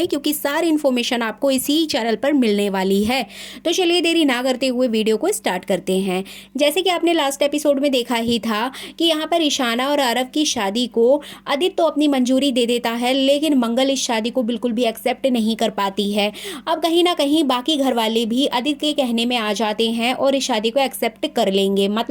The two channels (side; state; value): both; identical; correlation 1.00